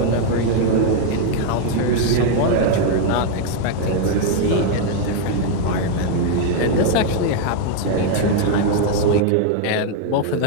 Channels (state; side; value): different; both; correlation 0.00